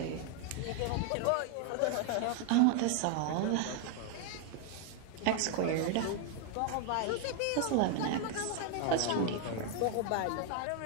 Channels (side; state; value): both; different; correlation 0.00